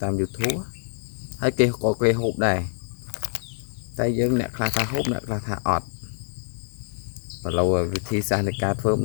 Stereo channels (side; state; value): right; silent; digital silence